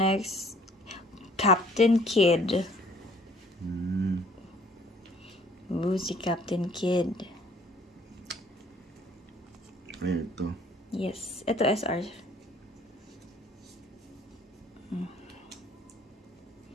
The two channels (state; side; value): normal; both; correlation 0.57